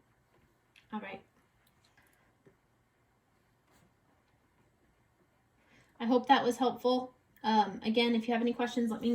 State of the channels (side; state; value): both; identical; correlation 1.00